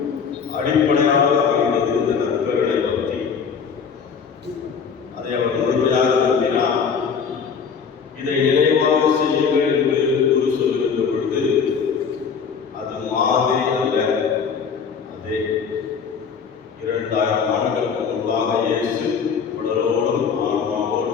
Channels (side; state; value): right; quieter; 6.2 dB